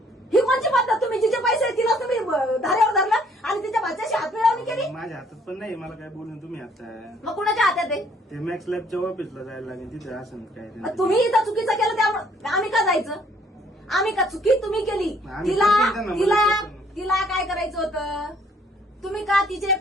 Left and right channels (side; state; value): both; normal; correlation 0.63